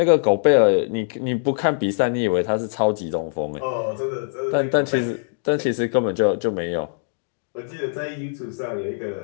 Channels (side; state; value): right; silent; digital silence